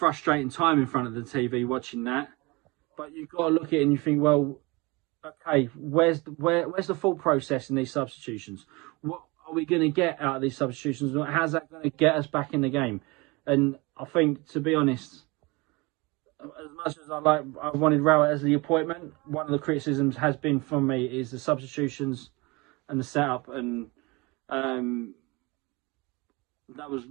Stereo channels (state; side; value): quieter; left; 25.3 dB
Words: time in front of the TV watching that. But you've got to look at it and you think, well, okay, where's the full process in these substitutions? What are we going to get out of these substitutions? How's that going to get us back in the game? And I think, to be honest, as much as I wanted Rowett as the appointment, one of the criticisms has been from me is the substitutions and the setup, and that